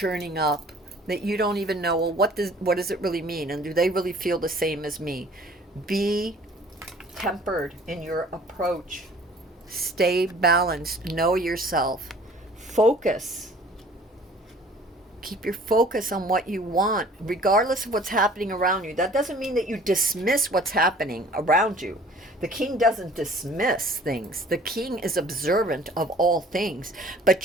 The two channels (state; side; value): normal; both; correlation 0.51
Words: up that you don't even know, well, what does it really mean, and do they really feel the same as me? Be tempered in your approach. Stay balanced. Know yourself. Focus. Keep your focus on what you want, regardless of what's happening around you. That doesn't mean that you dismiss what's happening around you. The king doesn't dismiss things. The king is observant of all things, but